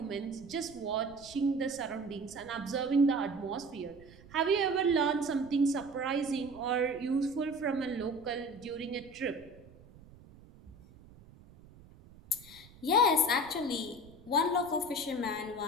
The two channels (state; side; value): noise; right; rumble, 22 dB below the sound